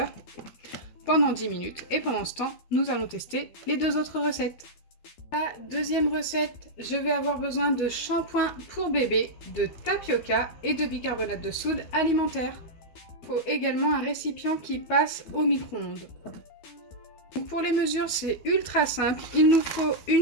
pendant 10 minutes. Et pendant ce temps, nous allons tester les deux autres recettes. La deuxième recette, je vais avoir besoin de shampoing pour bébé, de tapioca et de bicarbonate de soude alimentaire. Il faut également un récipient qui passe au micro-ondes. Pour les mesures, c'est ultra simple. Il nous faut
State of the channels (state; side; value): late; right; 12 ms